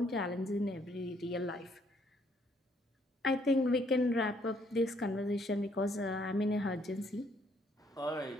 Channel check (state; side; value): normal; both; correlation 0.67